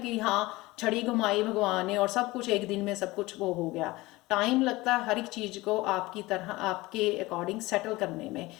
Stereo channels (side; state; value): right; quieter; 20.4 dB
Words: हाँ छड़ी घुमाई भगवान ने और सब कुछ एक दिन में सब कुछ वो हो गया। टाइम लगता है हर एक चीज़ को आपकी तरह, आपके अकॉर्डिंग सेटल करने में।